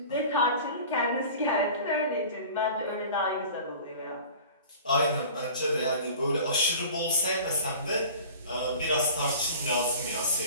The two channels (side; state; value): both; inverted; correlation -0.41